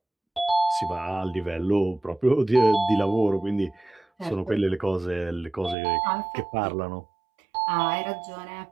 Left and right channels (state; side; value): drops out; left; at 5.8 s